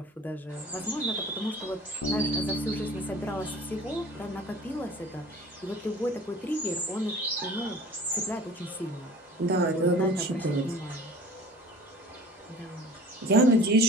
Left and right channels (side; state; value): both; normal; correlation 0.44